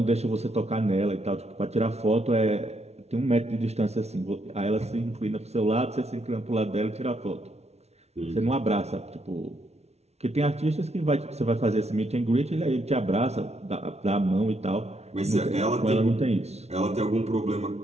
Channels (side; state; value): left; late; 0.31 ms